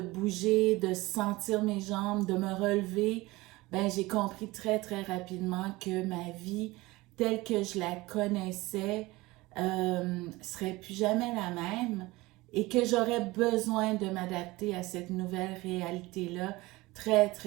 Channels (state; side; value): quieter; left; 20.7 dB